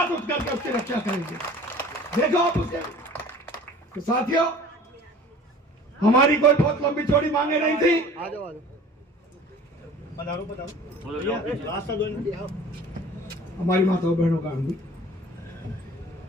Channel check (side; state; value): both; normal; correlation 0.45